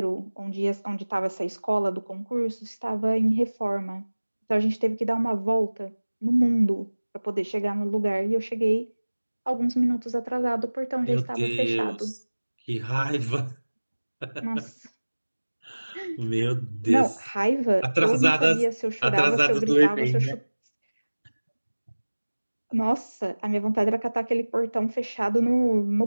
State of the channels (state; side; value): inverted; both; correlation -1.00